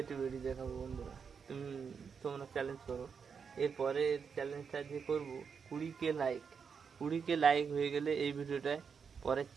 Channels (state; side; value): quieter; left; 6.2 dB